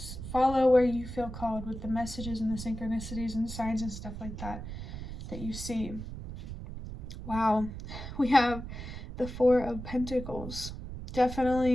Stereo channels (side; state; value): right; noise; rumble, 9 dB below the sound